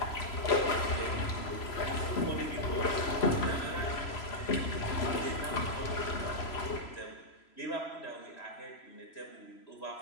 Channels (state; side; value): late; right; 3.0 ms